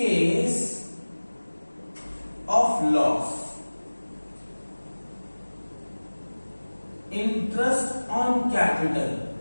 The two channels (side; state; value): both; inverted; correlation -1.00